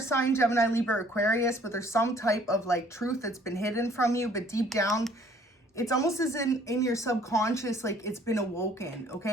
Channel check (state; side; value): normal; both; correlation 0.58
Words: Gemini, Libra, Aquarius, but there's some type of like truth that's been hidden from you, but deep down, it's almost as in your subconscious, like it's been awoken,